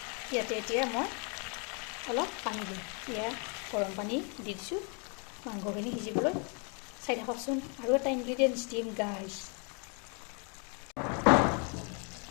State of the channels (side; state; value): right; quieter; 36.9 dB